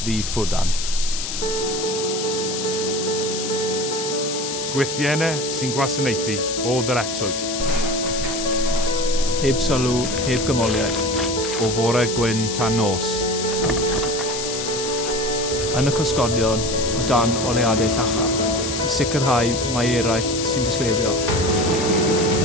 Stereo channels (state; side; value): noise; left; hiss, 5 dB below the sound